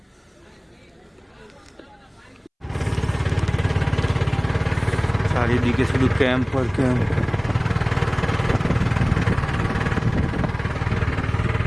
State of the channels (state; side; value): identical; both; correlation 1.00